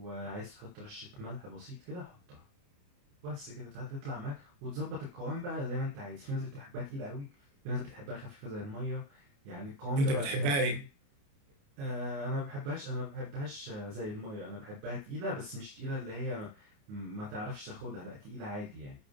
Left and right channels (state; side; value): late; left; 29 ms